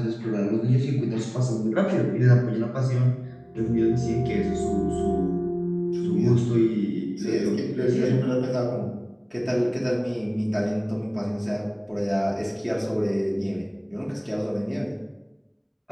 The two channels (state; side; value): identical; both; correlation 1.00